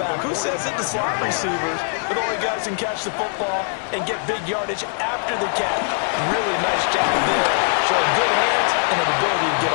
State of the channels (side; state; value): right; silent; 59 dB below the other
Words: Who says it? The slot receivers are the only guys who can catch the football and get big yardage after the catch. Really nice job there. Showing good hands and an ability to get